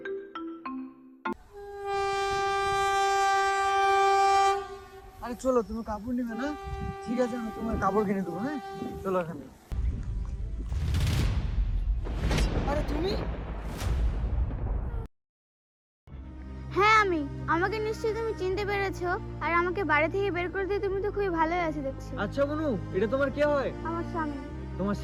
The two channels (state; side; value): identical; both; correlation 1.00